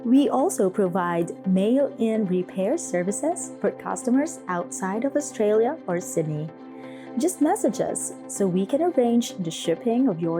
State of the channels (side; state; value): both; identical; correlation 1.00